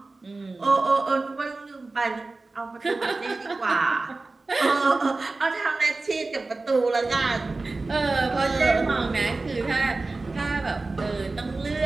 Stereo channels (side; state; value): left; quieter; 3.4 dB